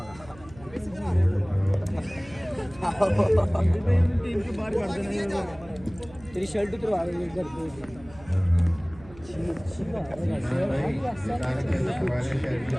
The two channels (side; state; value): right; noise; hum, 21 dB below the sound